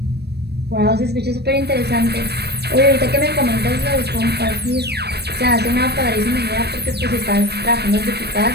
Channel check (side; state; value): left; late; 0.47 ms